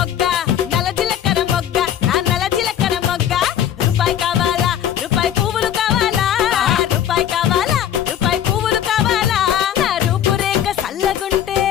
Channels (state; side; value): quieter; right; 10.1 dB